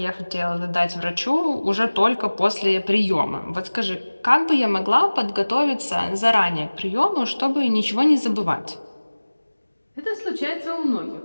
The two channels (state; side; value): inverted; both; correlation -1.00